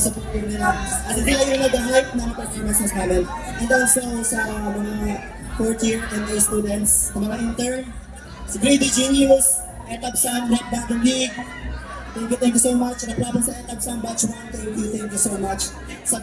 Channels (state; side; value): identical; both; correlation 1.00